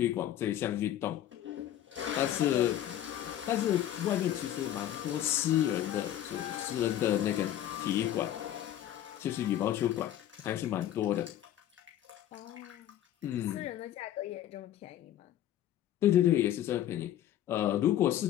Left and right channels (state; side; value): quieter; right; 12.0 dB